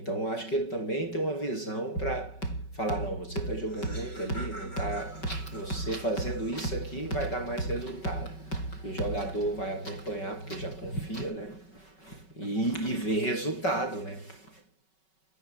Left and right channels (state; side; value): late; right; 5.3 ms